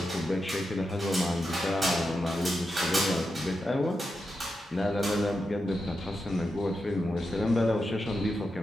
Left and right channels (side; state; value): both; normal; correlation 0.87